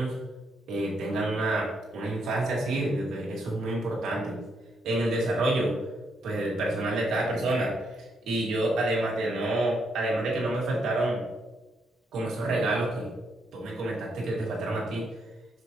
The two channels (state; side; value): normal; both; correlation 0.77